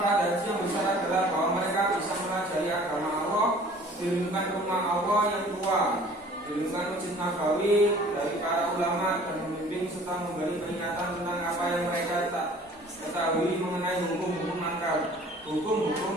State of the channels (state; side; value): normal; both; correlation 0.50